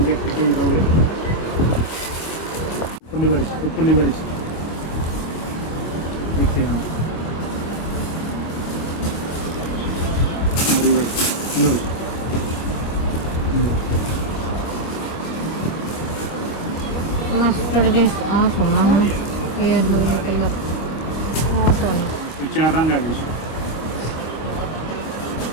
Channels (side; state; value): right; late; 25 ms